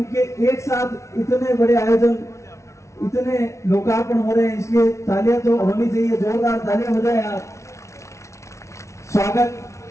एक साथ इतने बड़े आयोजन, इतने लोकार्पण हो रहे हैं, इसलिए तालियां तो होनी चाहिए, जोरदार तालियां बजाएं आप। स्वागत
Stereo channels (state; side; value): late; right; 0.14 ms